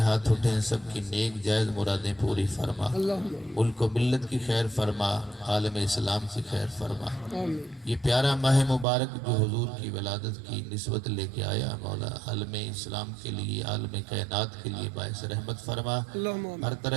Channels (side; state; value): left; drops out; at 8.8 s